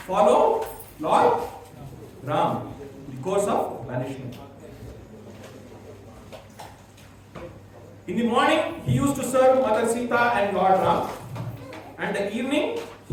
follow Lord Ram, the course of banishment. In the morning, he used to serve Mother Sita and Lord Ram, and the evening,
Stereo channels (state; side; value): identical; both; correlation 1.00